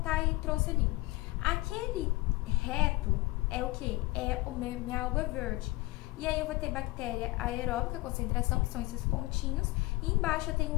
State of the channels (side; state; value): right; quieter; 21.2 dB